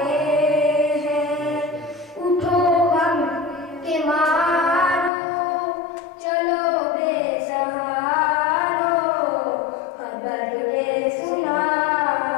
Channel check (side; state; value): right; drops out; at 5.1 s